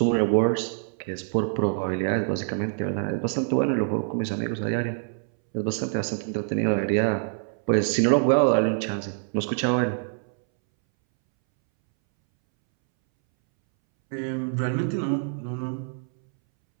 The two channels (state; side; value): silent; left; 61 dB below the other